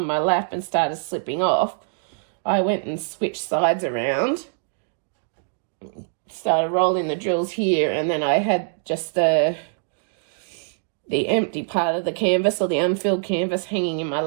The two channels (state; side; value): silent; left; digital silence